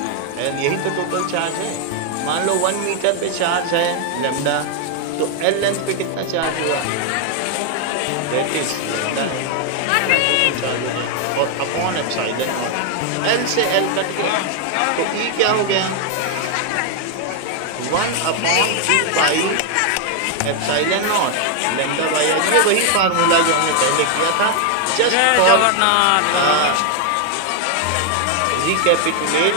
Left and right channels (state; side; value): different; both; correlation 0.00